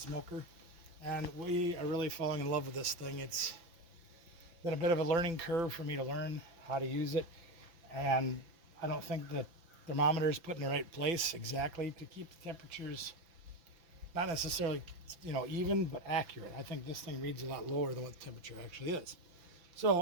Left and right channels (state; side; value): late; left; 5.9 ms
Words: And we are really falling in love with this thing. It's been a bit of a learning curve for me to learn how to use it. And I don't think the thermometer is put in the right place exactly to keep the temperatures not necessarily, even, but accurate. I think this thing reads a lot lower than what the temperature actually is.